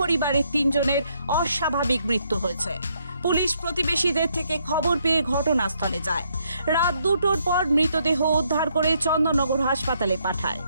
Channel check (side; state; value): both; inverted; correlation -0.73